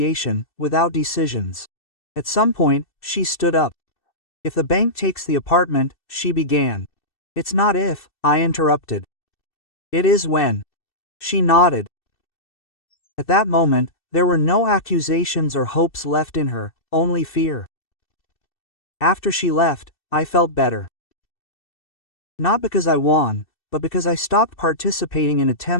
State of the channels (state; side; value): late; right; 2.6 ms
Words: without decisions. At some point, she stood up. "If the bank takes the apartment," she began. "It's not if," I interrupted. "It is when." She nodded. At that moment, there were no accusations or hopes left in her, only fear. After she left, I felt better. Not because I won, but because I stopped participating in